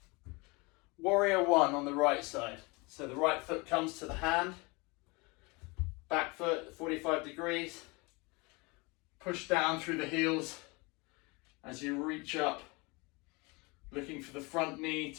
Warrior one on the right side. So the right foot comes to the hand. Back foot 45 degrees. Push down through the heels as you reach up, looking for the front knee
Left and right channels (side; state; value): right; quieter; 26.9 dB